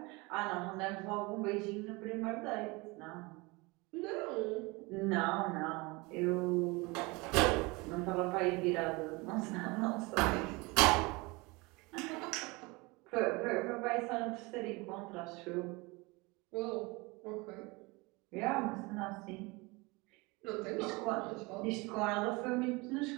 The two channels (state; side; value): quieter; left; 25.2 dB